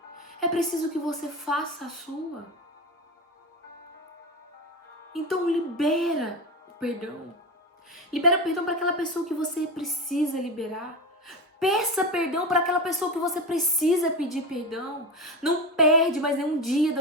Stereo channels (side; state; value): both; normal; correlation 0.22